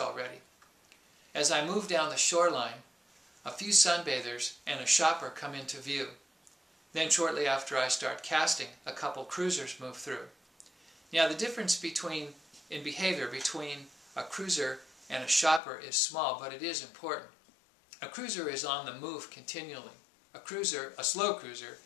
As I move down the shoreline, a few sunbathers and a shopper come into view. Then shortly after I start casting, a couple cruisers move through. Now the difference in behavior between a cruiser and a shopper is small, but it is important. A cruiser is on the move continually. a cruiser, a slow cruiser,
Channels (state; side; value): drops out; right; at 15.6 s